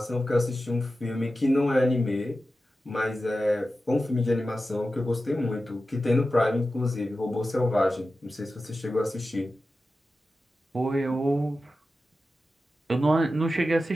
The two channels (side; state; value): both; normal; correlation 0.93